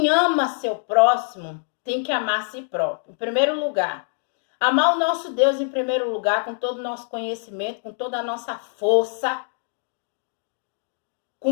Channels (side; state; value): right; silent; digital silence